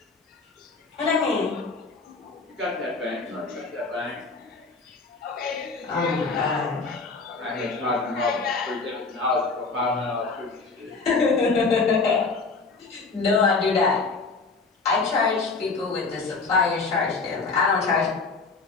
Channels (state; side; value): quieter; right; 4.2 dB